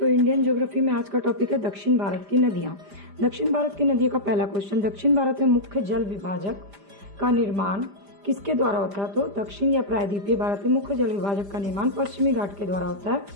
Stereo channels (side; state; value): left; late; 5.0 ms